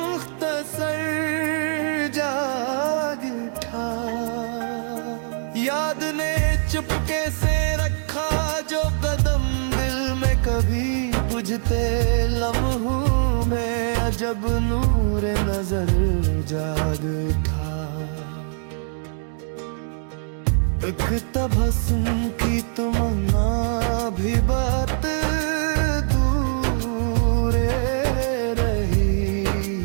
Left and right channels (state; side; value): silent; left; digital silence